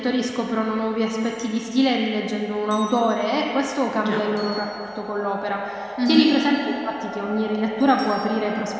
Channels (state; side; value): identical; both; correlation 1.00